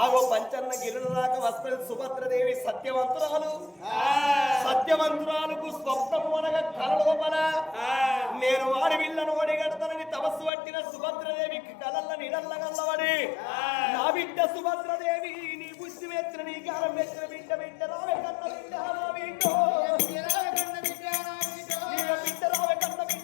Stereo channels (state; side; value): drops out; right; at 10.5 s